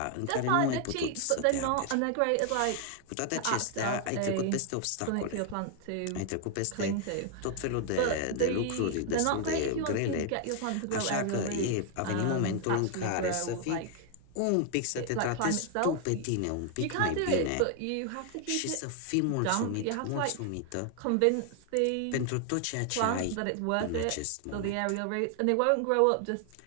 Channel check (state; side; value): different; both; correlation 0.00